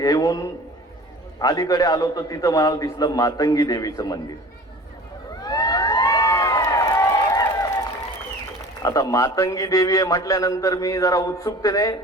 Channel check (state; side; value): normal; both; correlation 0.42